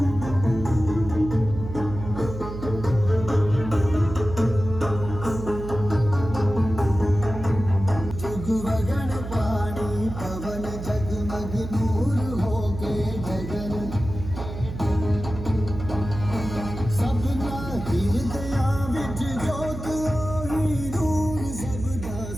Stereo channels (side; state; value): right; noise; hum, 8 dB below the sound